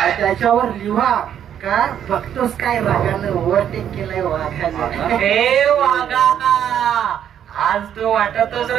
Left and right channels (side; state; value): left; quieter; 9.6 dB